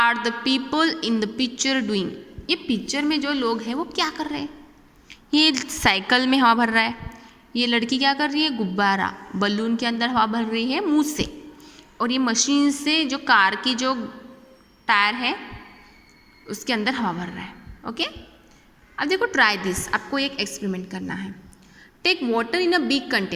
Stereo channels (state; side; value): identical; both; correlation 1.00